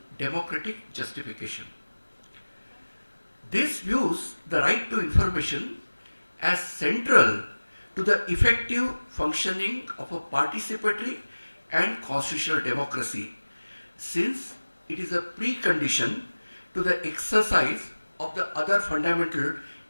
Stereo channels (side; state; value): both; inverted; correlation -1.00